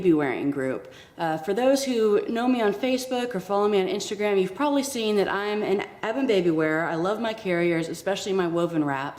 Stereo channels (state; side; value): identical; both; correlation 1.00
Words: wearing group. For those who know me on Facebook or follow me on Instagram, you've probably seen that I'm an avid baby wearer. I love my carriers, especially my woven